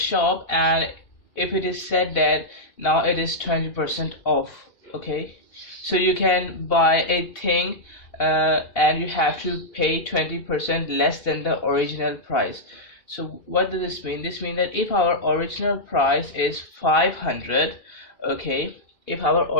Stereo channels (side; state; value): right; late; 2.8 ms